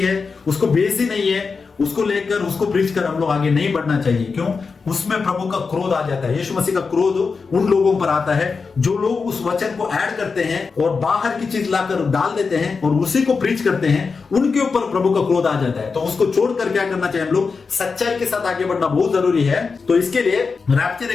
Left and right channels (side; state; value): right; quieter; 4.9 dB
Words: है उसको बेस ही नहीं है उसको लेकर उसको प्रीच कर हम लोग आगे नहीं बढ़ना चाहिए। क्यों? उसमें प्रभु का क्रोध आ जाता है। यीशु मसीह का क्रोध उन लोगों पर आता है जो लोग उस वचन को ऐड करते हैं और बाहर की चीज लाकर डाल देते हैं और उसी को प्रीच करते हैं, उनके ऊपर प्रभु का क्रोध आ जाता है। तो उसको छोड़कर क्या करना चाहिए, हम लोग सच्चाई के साथ आगे बढ़ना बहुत जरूरी है। तो इसके लिए रैप्चर